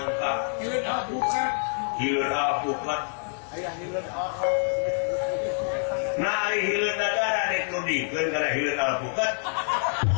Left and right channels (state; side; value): silent; right; 60 dB below the other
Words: hileud alpukat, Aya hileud nah hileud nagara dek nudingkeun kana hileud alpukat.